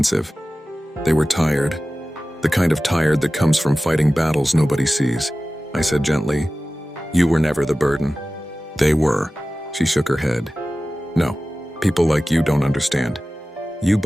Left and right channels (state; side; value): normal; both; correlation 0.96